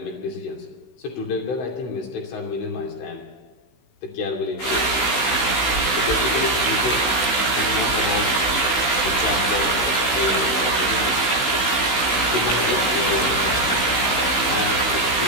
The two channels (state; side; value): late; right; 16 ms